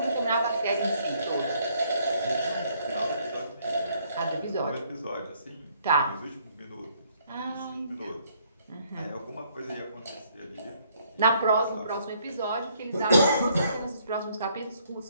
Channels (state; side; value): inverted; both; correlation -0.67